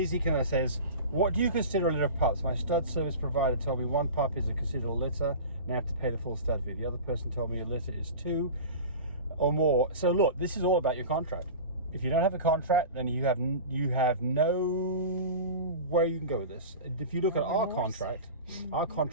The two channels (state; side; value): inverted; both; correlation -0.33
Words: kind of says, "What do you consider a litter of pups? My stud service provider told me 1 pup is considered a litter, and I have to pay the full stud fee. The other person told me a litter is 2 or more. So look, this is all about your contract. If you don't have a contract, then you have no where you can go with this. If you look at our contract, our